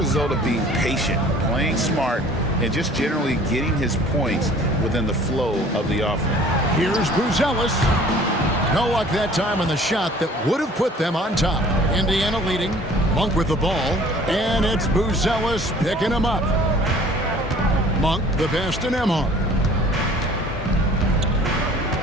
of being patient, playing smart, and just generally getting his points within the flow of the offense. Here's Buzelis. No luck that time on the shot that would have put them on top. Indiana leading. Monk with the ball. And it's Buzelis picking him up. Monk the pass to Nembhard.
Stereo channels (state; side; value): normal; both; correlation 0.51